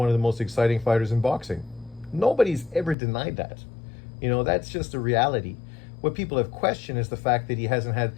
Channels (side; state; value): right; drops out; at 3.0 s